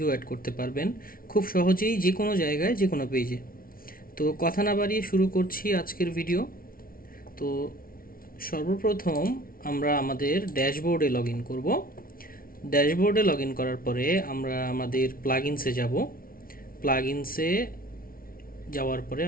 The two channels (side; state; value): right; late; 0.43 ms